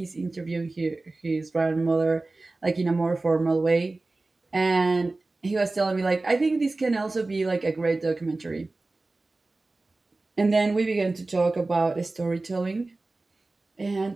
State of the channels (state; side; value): quieter; left; 3.2 dB